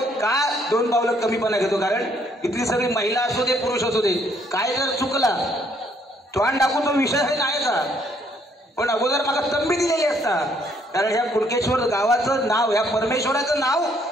का 2 पावलं कमीपणा घेतो, कारण इथली सगळी महिला असू दे पुरुष असू दे काय जर चुकला तोंड टाकून तो विषय आहे नाही का, पण अगोदर मला तंबी दिलेली असता, कारण ह्या कुणकेश्वर गावाचं नाव ह्या परमेश्वराचं नाव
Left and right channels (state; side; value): normal; both; correlation 0.67